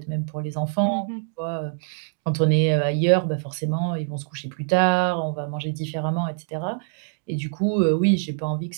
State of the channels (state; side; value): silent; left; digital silence